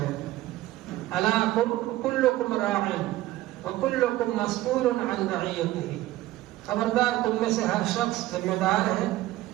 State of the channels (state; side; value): quieter; left; 16.2 dB